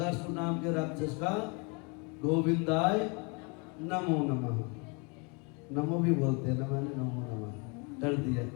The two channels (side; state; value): right; quieter; 32.5 dB